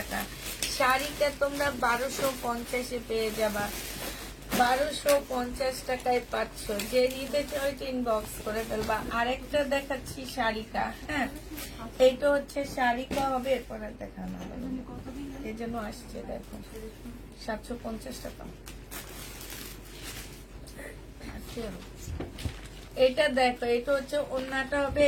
শাড়িটা তোমরা 1250-এ পেয়ে যাবা, 1250 টাকায় পাচ্ছ। যে নিতে চাও ইনবক্স করে ফেলবা। আরেকটা দেখাচ্ছি শাড়িটা। হ্যাঁ, এইটা হচ্ছে শাড়িটা হবে, এরপরে দেখানো হবে, এই জন্য আসছে। দেখো 750 টাকা। এটা দেখো, এটা হচ্ছে ওড়নাটা হবে,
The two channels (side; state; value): both; identical; correlation 1.00